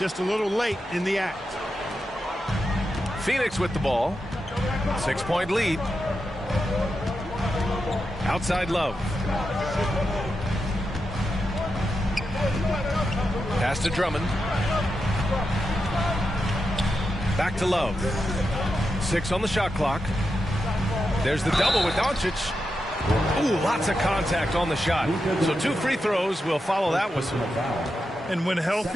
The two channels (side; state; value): both; normal; correlation 0.88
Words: a little late in the act. Phoenix with the ball. 6-point lead. Outside Love. Pass to Drummond. Back to Love. 6 on the shot clock. There's the double with Doncic. Ooh, lots of contact on the shot. So 2 free throws will follow that whistle. And when